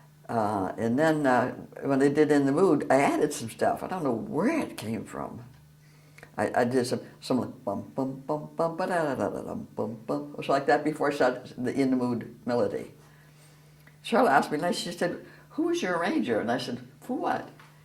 then when they did In the Mood, I added some stuff. I don't know where it came from. I did some like bum bum bum bum ba da da da da bum bum. It was like that before I started the In the Mood melody. Charlotte asked me, she said, "Who was your arranger?" And I said, "For what?"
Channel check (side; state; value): both; identical; correlation 1.00